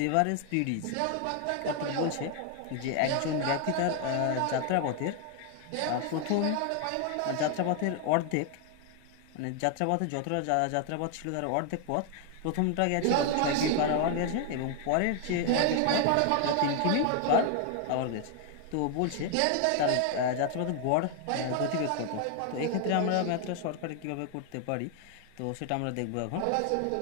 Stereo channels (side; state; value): both; different; correlation 0.00